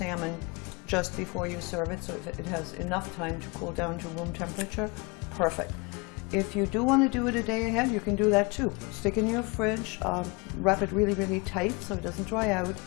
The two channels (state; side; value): quieter; right; 28.5 dB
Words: just before you serve it, so if it has enough time to cool down to room temperature, perfect. If you do want to do it a day ahead, you can do that too. Stick in your fridge, wrap it really, really tight so it doesn't dry out.